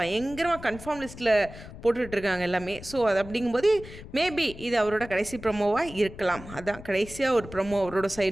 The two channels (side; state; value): left; noise; rumble, 15 dB below the sound